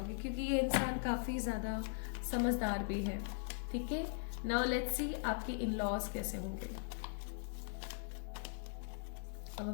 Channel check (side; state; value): right; silent; 51 dB below the other